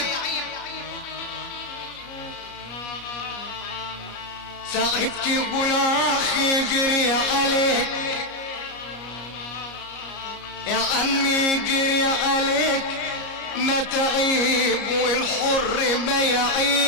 ساعات تقول اخي جري عليك، يا عمي جري عليك ما تعيب، والحر ما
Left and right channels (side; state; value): right; late; 33 ms